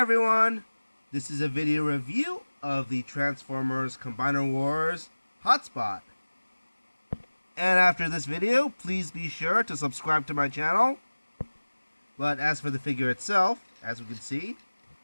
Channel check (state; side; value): inverted; both; correlation -1.00